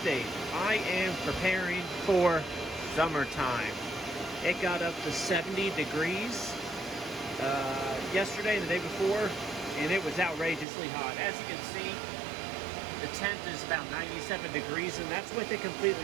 I am preparing for summertime. It got up to 70 degrees yesterday and the day before, and it was outrageously hot. As you can see, the tent is about 97 degrees, and that's with it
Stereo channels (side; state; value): left; drops out; at 10.7 s